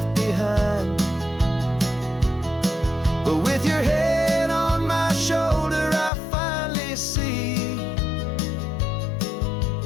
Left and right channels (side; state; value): right; drops out; at 6.1 s